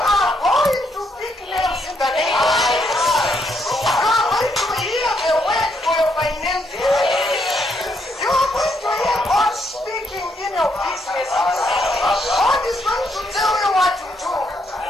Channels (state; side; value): normal; both; correlation 0.75